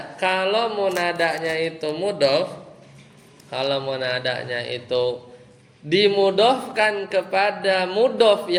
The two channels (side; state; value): both; identical; correlation 1.00